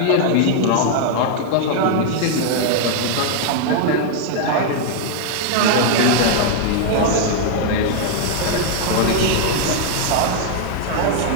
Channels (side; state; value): both; different; correlation 0.00